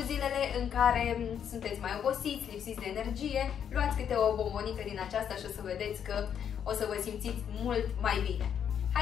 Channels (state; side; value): quieter; right; 8.5 dB